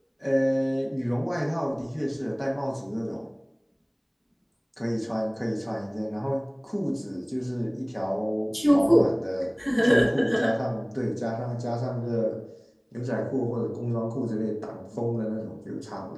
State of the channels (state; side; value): identical; both; correlation 1.00